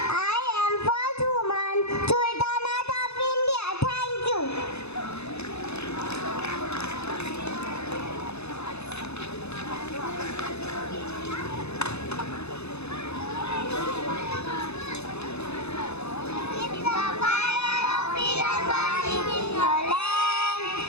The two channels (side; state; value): right; late; 0.80 ms